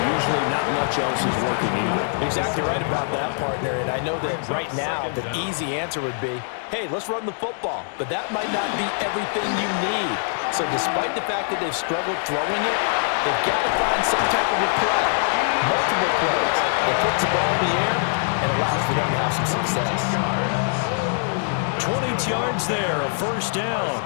usually not much else is working either. Exactly right about that, partner. And I know that right now the easy answer would be, hey, let's run the football. But that might not be everything you need. So despite the fact that they've struggled throwing it, they've got to find some type of a play, multiple plays that puts the ball in the air and allows for them to have some success. 20 yards there, a first down.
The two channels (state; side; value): silent; right; digital silence